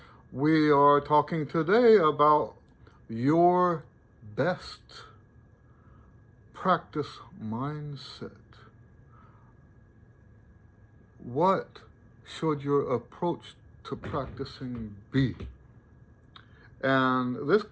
We are talking today about your best practice mindset. What should your approach to practicing be? And this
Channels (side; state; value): both; identical; correlation 1.00